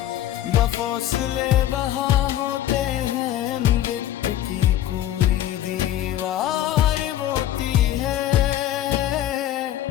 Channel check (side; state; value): right; quieter; 12.5 dB